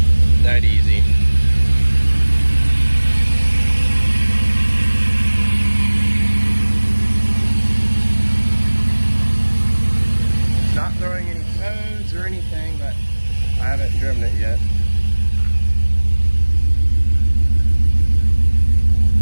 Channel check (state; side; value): inverted; both; correlation -1.00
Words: That easy. Not throwing any codes or anything, but I haven't driven it yet.